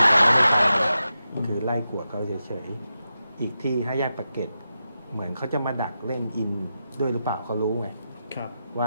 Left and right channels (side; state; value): both; inverted; correlation -0.89